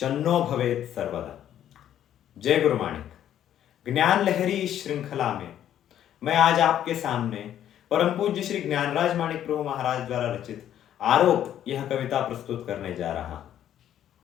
भवेत् सर्वदा। जय गुरु माणिक। ज्ञान लहरी इस श्रृंखला में मैं आज आपके सामने परम पूज्य श्री ज्ञानराज माणिक प्रभु महाराज द्वारा रचित आरोप यह कविता प्रस्तुत करने जा रहा हूं।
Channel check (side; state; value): right; quieter; 10.9 dB